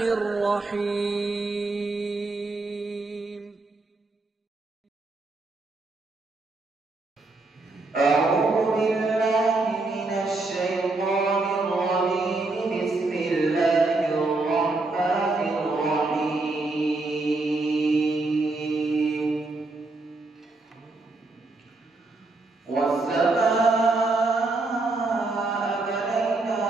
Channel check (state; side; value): quieter; left; 3.3 dB